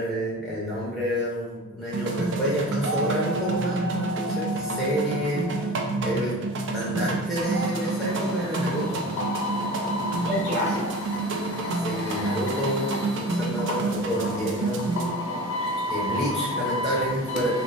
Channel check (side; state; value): both; normal; correlation 0.35